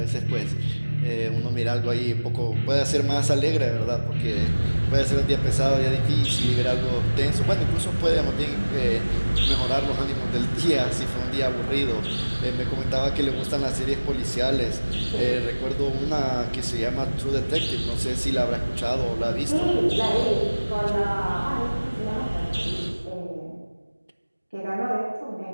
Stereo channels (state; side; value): inverted; both; correlation -1.00